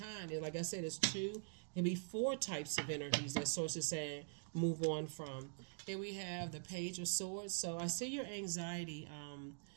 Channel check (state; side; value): silent; left; digital silence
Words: And like I said, it's two, maybe four types of energies that Source is saying move on from. Here we have the Page of Swords. So I see your anxiety